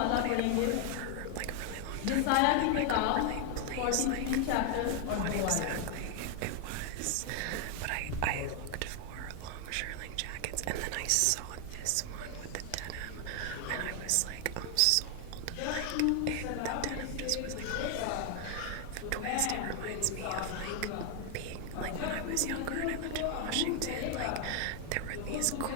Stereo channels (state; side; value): different; both; correlation 0.00